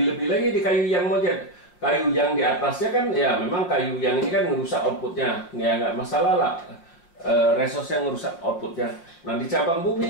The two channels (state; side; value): late; right; 5.7 ms